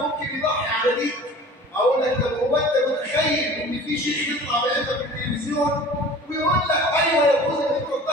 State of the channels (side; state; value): both; normal; correlation 0.42